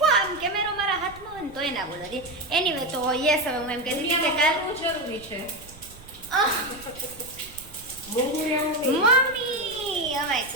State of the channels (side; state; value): right; noise; rumble, 20 dB below the sound